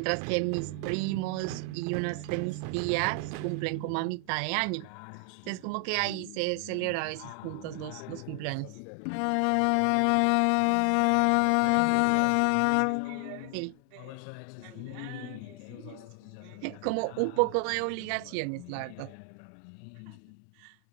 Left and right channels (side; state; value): both; different; correlation 0.00